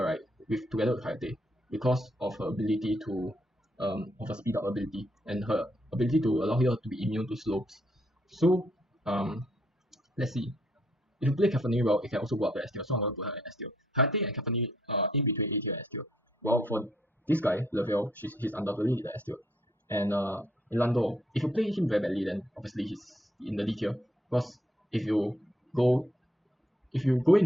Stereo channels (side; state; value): both; normal; correlation 0.71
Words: right? Together with Hayate, because of her ability to of her speed up ability and her ability to allow her to be immune to slopes. So let's see. If you play Caphany well, it can also go up to S tier. So I'm going to put her in S tier. Hayate and Caphany are in between A tier and S tier. Well, for this guy, Lavelle, he's undoubtedly in the S tier. And Lando, if you play him very badly, then obviously he's in the D tier. Because if you go